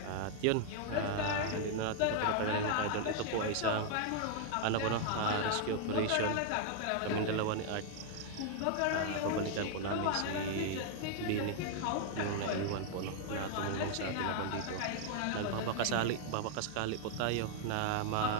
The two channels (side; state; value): both; different; correlation 0.00